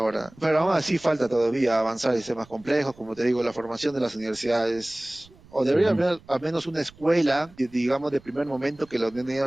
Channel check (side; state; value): right; noise; rumble, 26 dB below the sound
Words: Pero aún así falta todavía avanzar en sistemas complejos, como te digo, la formación de las universidades. O debería haber al menos una escuela, digamos, de primer momento, que la